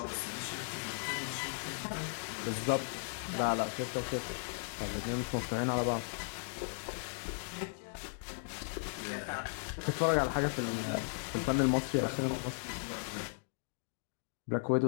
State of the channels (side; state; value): right; silent; digital silence